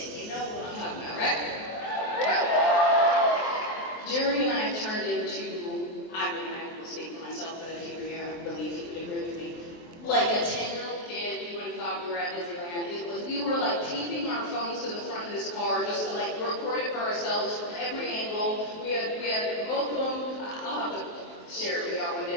You know what I'm talking about, right? Yeah. Jeremy and I turned into, I will speak for myself, but if you were here, I believe he would agree with me. Like a 10-year-old kid, you would have thought we were at Disneyland. We were like taping our phones to the front of this car just to like record it for ourselves from every angle. We had both of them. I'll have to share it with y'all one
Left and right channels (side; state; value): right; late; 23 ms